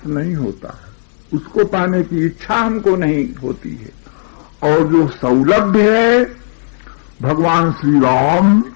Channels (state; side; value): silent; right; digital silence